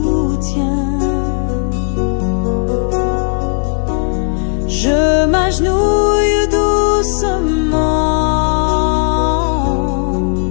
je m'agenouille doucement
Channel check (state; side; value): silent; right; 62 dB below the other